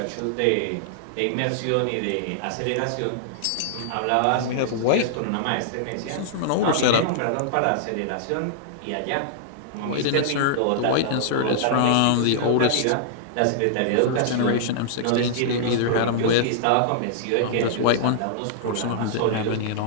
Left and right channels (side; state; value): both; different; correlation -0.01